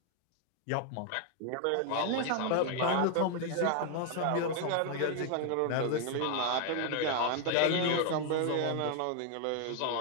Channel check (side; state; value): both; different; correlation 0.00